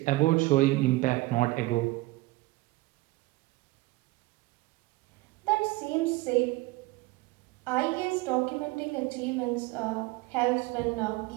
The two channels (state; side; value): quieter; left; 20.6 dB